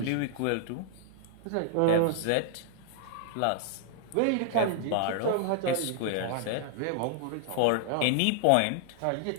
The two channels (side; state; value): both; different; correlation -0.01